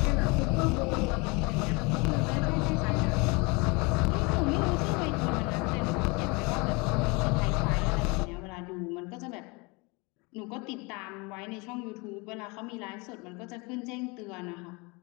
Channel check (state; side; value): quieter; right; 28.0 dB